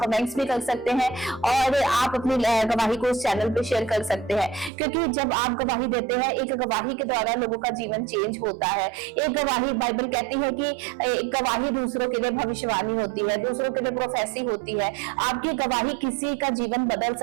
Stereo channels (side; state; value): left; drops out; at 4.7 s